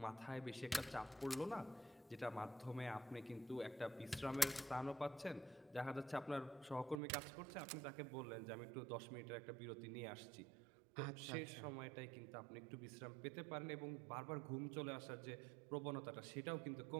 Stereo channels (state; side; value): drops out; left; at 7.0 s